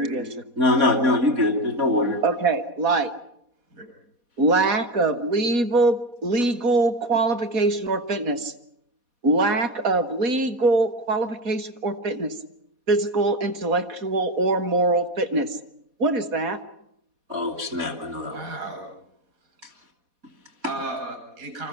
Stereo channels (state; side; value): late; left; 4.2 ms